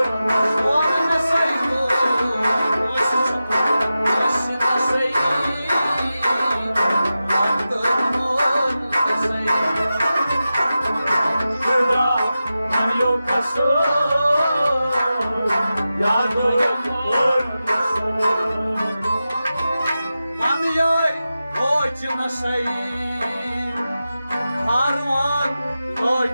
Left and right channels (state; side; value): inverted; both; correlation -0.92